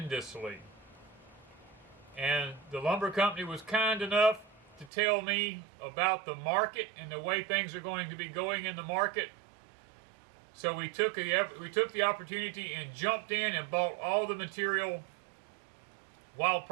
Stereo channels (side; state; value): left; drops out; at 4.9 s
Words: And the lumber company was kind enough to tell me about the market and the way things are going to be going in the market. So we took the opportunity and jumped in and bought all the material while